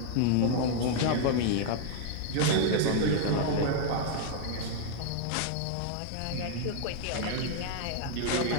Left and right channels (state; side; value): different; both; correlation 0.00